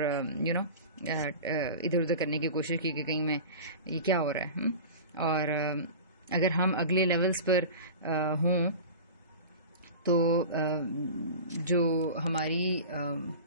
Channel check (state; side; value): inverted; both; correlation -0.34